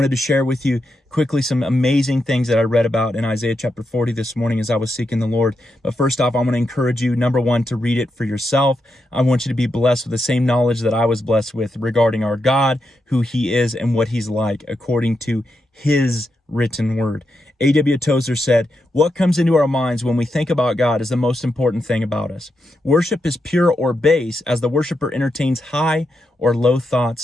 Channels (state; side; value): normal; both; correlation 0.85